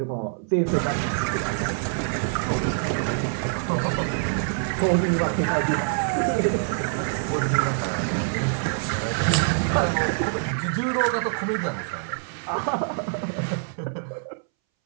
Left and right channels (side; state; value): left; silent; 62 dB below the other